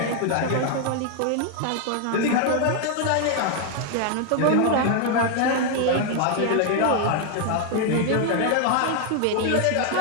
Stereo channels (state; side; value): different; both; correlation 0.00